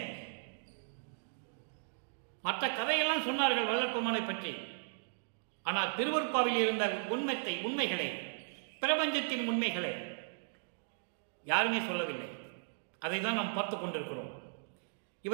மற்ற கதையெல்லாம் சொன்னார்கள் வல்லற்பமானை பற்றி. ஆனால் திருவருட்பாவில் இருந்த உண்மைகளை, பிரபஞ்சத்தின் உண்மைகளை யாருமே சொல்லவில்லை. அதை தான் நாம் பார்த்து கொண்டிருக்கிறோம்.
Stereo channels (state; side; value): silent; left; digital silence